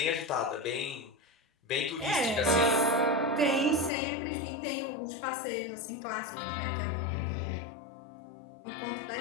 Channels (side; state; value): right; drops out; at 3.9 s